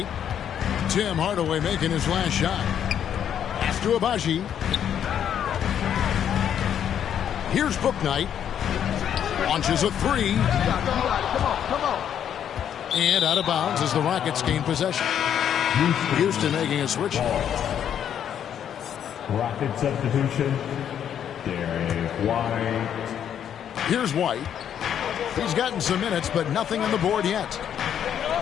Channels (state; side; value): quieter; right; 9.3 dB